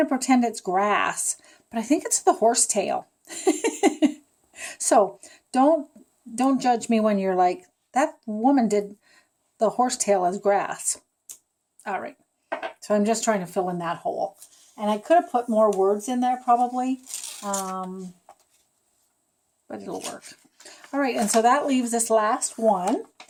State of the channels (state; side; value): identical; both; correlation 1.00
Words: to pretend it's grass, but I think it's the horsetail. So don't judge me when you're like, that woman did the horsetail as grass. All right. So I'm just trying to fill in that hole. And I could have put more words in there probably, but it'll work. All right, and so that leaves this last one.